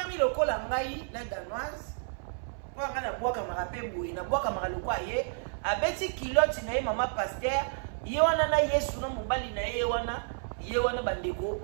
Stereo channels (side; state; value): left; silent; 57 dB below the other